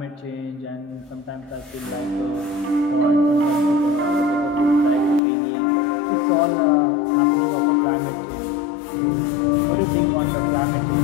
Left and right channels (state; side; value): drops out; right; at 5.2 s